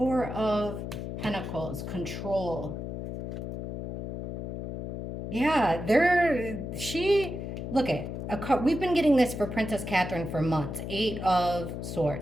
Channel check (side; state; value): left; noise; hum, 6 dB below the sound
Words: of Pentacles, control. Yeah, look at we've been getting this for Princess Catherine for months. Eight of